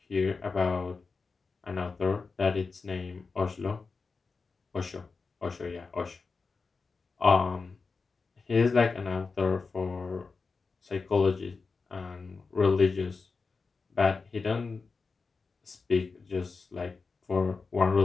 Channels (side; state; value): right; quieter; 4.5 dB